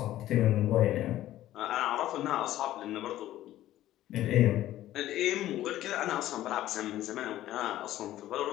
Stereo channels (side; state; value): right; quieter; 14.0 dB